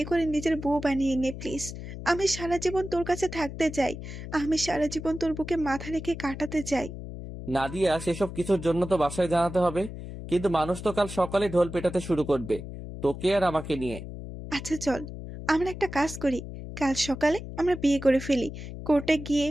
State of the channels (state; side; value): noise; left; hum, 10 dB below the sound